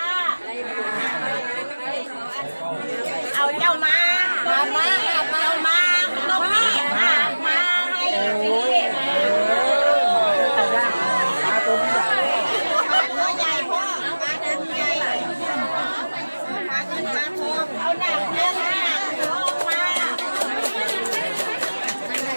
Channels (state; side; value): inverted; both; correlation -1.00